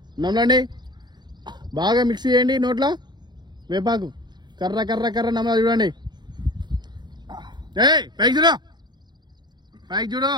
నమ్మలండి. బాగా మిక్స్ చేయండి నోట్లో. వేపాకు కర్ర కర్ర కర్ర నమ్మలా చూడండి. పైకి చూడు. పైకి చూడు.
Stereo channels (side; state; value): left; late; 0.21 ms